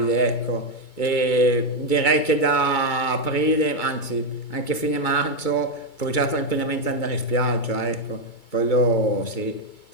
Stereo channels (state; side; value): late; right; 2.3 ms